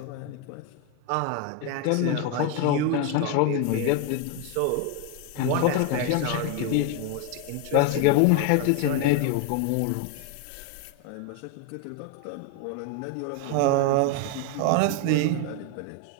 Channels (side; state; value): both; different; correlation 0.01